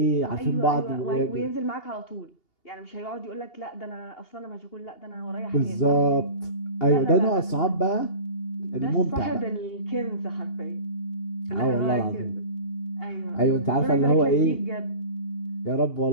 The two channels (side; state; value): right; late; 2.8 ms